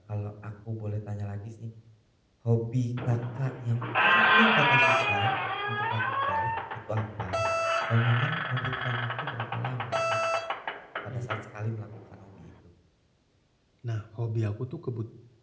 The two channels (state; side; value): identical; both; correlation 1.00